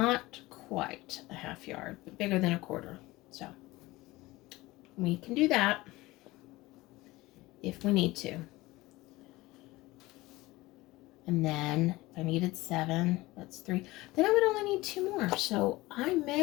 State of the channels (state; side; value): quieter; right; 19.9 dB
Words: quite a half yard, but bigger than a quarter. So we can do that if we need to. And then if I needed 7, that's 3. Then I would only need 2 more. So I